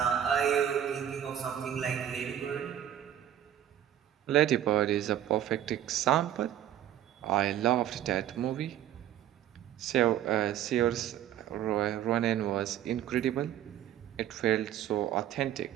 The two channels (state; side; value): quieter; left; 11.1 dB